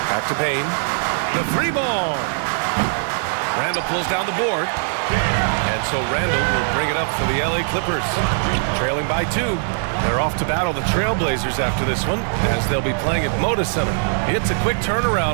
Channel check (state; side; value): silent; left; digital silence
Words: Back to Bane. The 3-ball. Randall pulls down the board. And so Randall will bring it up for the LA Clippers. Trailing by 2. They're off to battle the Trailblazers after this one, as they'll be playing at Moda Center. It's a quick